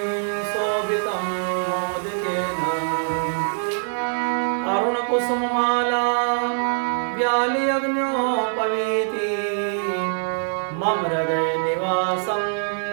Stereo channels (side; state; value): left; silent; 63 dB below the other